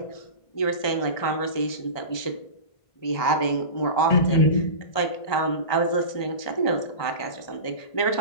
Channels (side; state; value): right; late; 1.2 ms